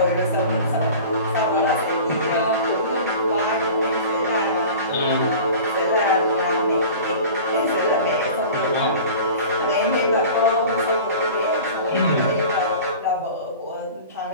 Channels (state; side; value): inverted; both; correlation -0.40